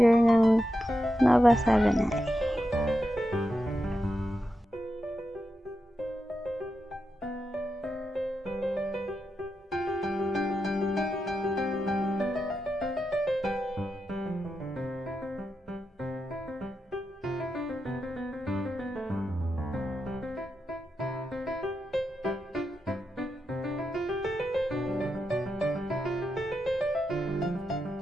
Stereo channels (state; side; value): normal; both; correlation 0.87